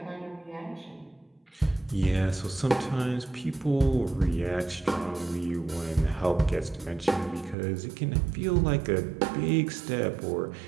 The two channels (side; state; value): left; drops out; at 7.6 s